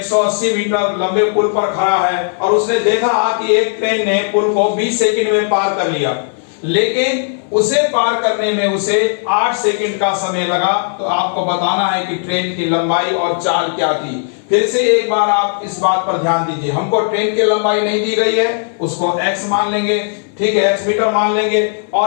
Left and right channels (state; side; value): silent; right; 57 dB below the other